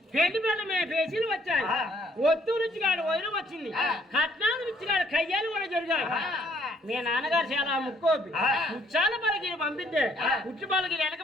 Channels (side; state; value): both; normal; correlation 0.65